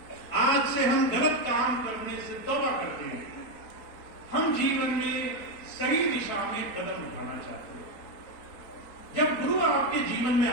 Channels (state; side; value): late; right; 4.4 ms